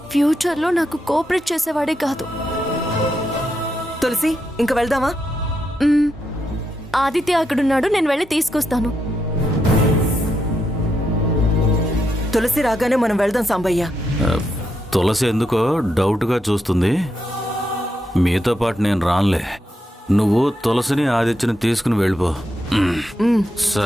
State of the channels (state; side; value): normal; both; correlation 0.82